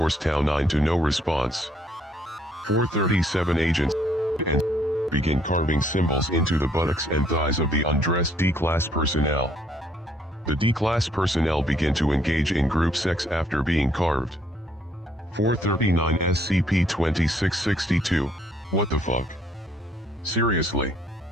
Tau 9 to no response. 437 Agents and begin carving symbols into the buttocks and thighs of the undressed D-Class personnel. The D-Class personnel begin to engage in group sex after being carved. 439 SCP-2662, what the fuck? Seriously?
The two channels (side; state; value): both; normal; correlation 0.66